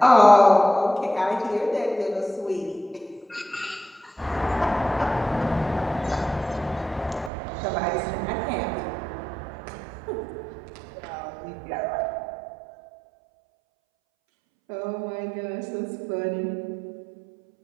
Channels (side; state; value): left; drops out; at 7.3 s